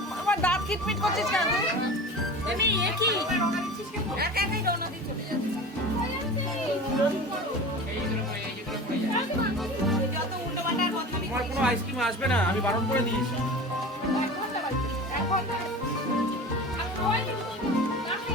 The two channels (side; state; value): both; normal; correlation 0.34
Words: আমার দাঁত কিটমিট করছিস কেন তুই? আমি একই একা একাই রওনা দিয়ে চলে যাচ্ছি যত উল্টো পাল্টা বদনামি তোমার কোনো আইসক্রিম আসবে না, আমি বারণ করে দিয়েছি।